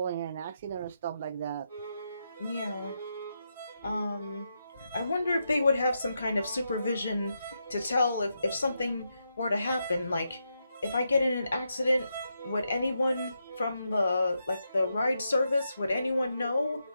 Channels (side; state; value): both; inverted; correlation -0.84